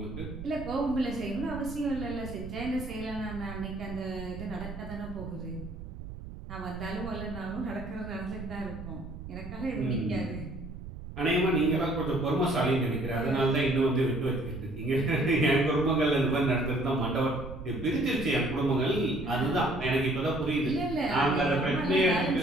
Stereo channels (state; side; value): noise; right; rumble, 11 dB below the sound